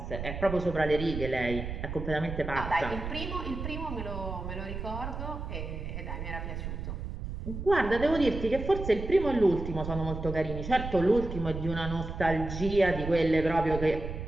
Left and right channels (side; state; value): right; noise; rumble, 7 dB below the sound